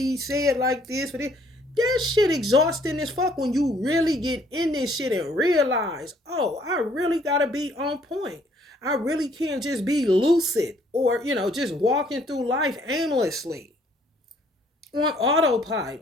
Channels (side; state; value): both; normal; correlation 0.63